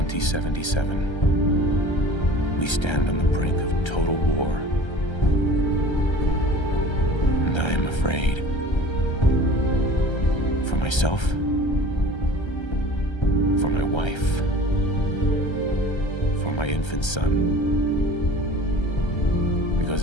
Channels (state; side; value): late; right; 1.3 ms